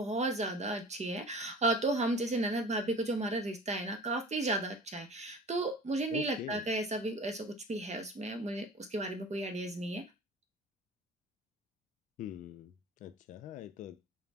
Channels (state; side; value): normal; both; correlation 0.40